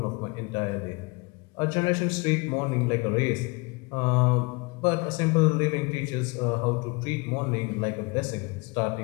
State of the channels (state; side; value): quieter; right; 27.1 dB